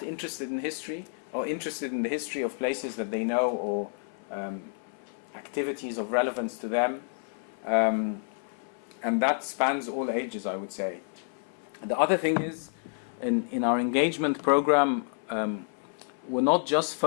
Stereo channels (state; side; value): silent; right; 56 dB below the other